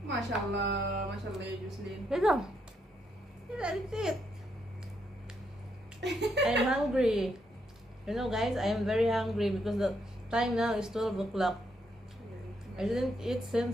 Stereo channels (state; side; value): normal; both; correlation 0.77